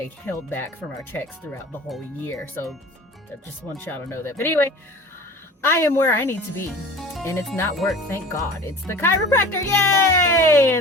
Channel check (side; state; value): both; normal; correlation 0.40